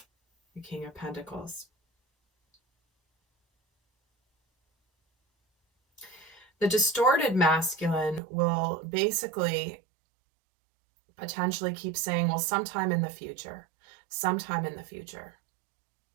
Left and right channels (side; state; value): left; drops out; at 8.2 s